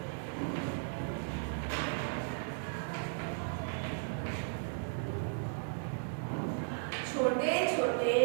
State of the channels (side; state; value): left; silent; digital silence